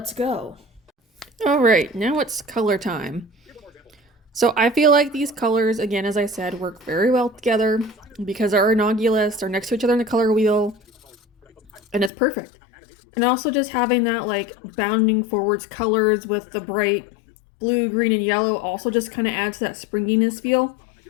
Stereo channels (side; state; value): right; drops out; at 12.1 s